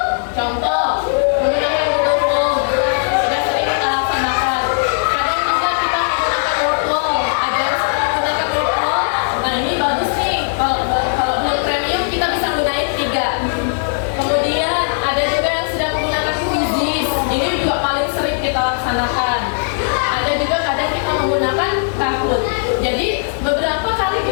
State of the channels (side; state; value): right; silent; digital silence